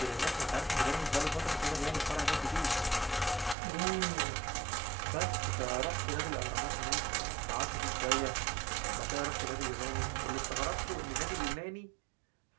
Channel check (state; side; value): drops out; left; at 3.6 s